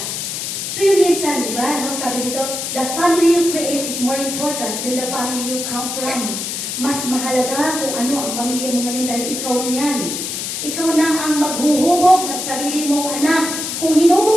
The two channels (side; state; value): left; noise; hiss, 4 dB below the sound